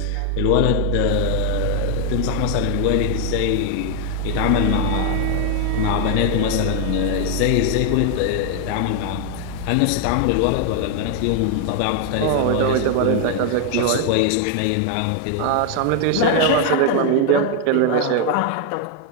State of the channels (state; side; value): different; both; correlation 0.00